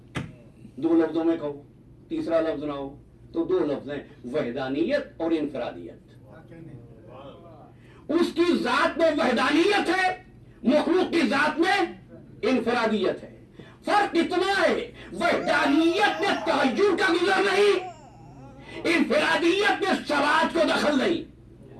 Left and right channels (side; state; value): both; identical; correlation 1.00